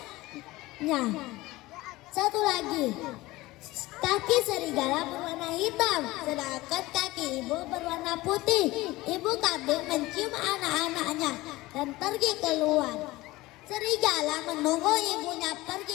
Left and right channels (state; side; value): quieter; right; 19.2 dB